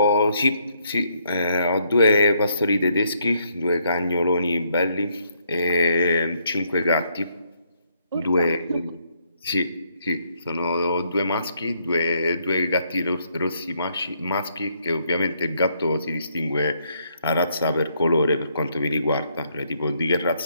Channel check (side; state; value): both; inverted; correlation -0.72